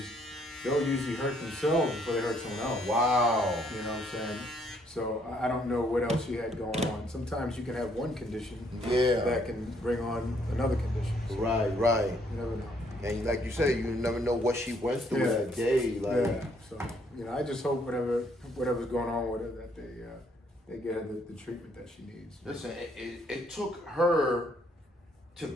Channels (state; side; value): normal; both; correlation 0.68